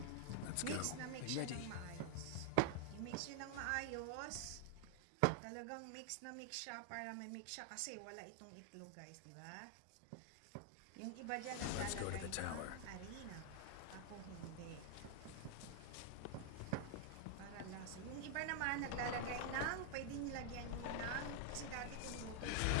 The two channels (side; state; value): both; different; correlation 0.00